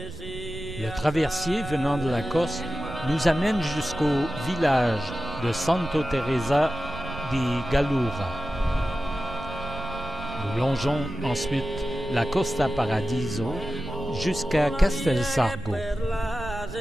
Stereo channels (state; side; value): noise; right; rumble, 11 dB below the sound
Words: Le traversier venant de la Corse nous amène jusqu'au village de Santo Teresa di Gallura. Nous longeons ensuite la Costa Paradiso jusqu'à Castelsargo.